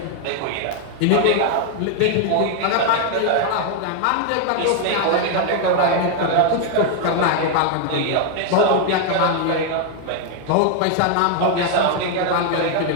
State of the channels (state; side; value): different; both; correlation 0.00